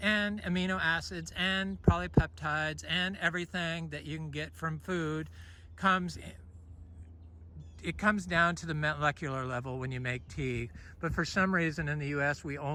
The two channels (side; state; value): both; identical; correlation 1.00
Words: and amino acids, and polypeptides, and everything that you can get from food comes down to the molecular level when you make tea. But for some reason in the US, we